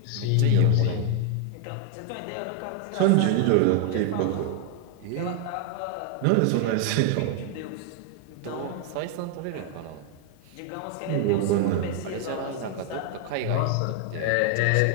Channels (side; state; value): both; different; correlation 0.00